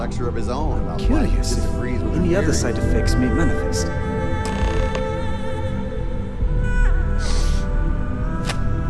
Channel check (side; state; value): both; identical; correlation 1.00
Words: of his own about why Curious he if disagrees with any her other theory. side effects may manifest.